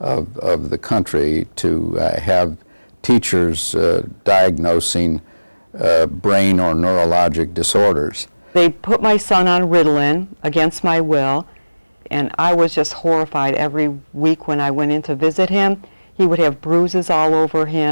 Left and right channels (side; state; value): both; inverted; correlation -1.00